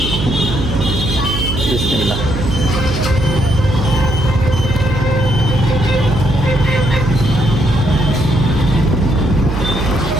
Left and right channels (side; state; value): right; noise; hum, 4 dB below the sound